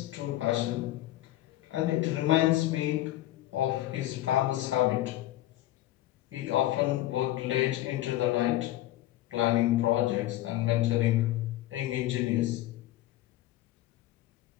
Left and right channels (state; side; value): quieter; right; 15.1 dB